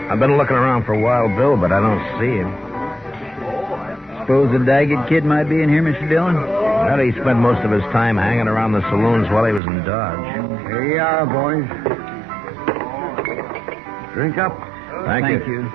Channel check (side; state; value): left; drops out; at 9.6 s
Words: I've been looking around for Wild Bill, but I don't see him. Suppose the Daggett kid might be in here, Mr. Dillon? How did he spend most of his time hanging around the saloons while he was in Dodge? Here you are, boys. Drink up. Thank you.